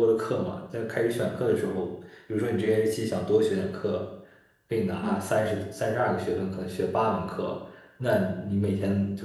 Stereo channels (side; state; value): both; identical; correlation 1.00